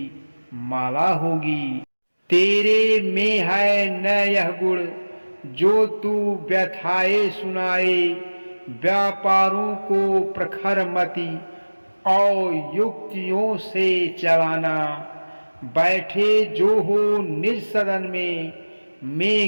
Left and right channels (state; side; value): inverted; both; correlation -1.00